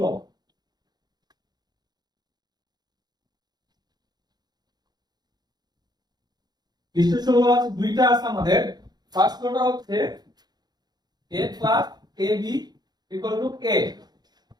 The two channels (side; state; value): left; late; 0.20 ms